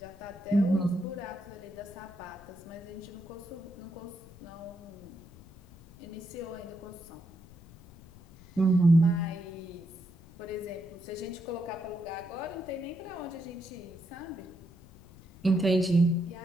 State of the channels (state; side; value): noise; left; rumble, 21 dB below the sound